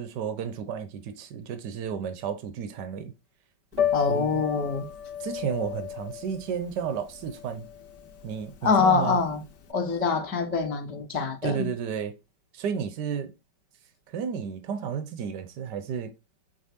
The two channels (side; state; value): left; late; 5.2 ms